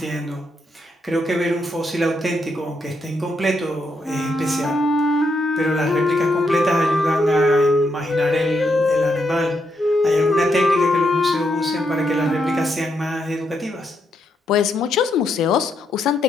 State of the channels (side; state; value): both; normal; correlation 0.79